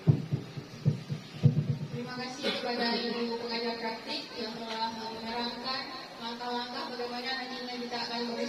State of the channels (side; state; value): both; identical; correlation 1.00